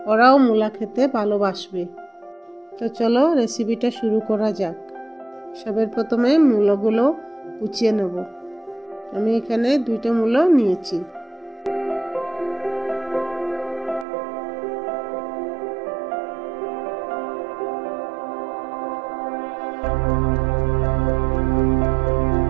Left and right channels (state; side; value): drops out; left; at 14.1 s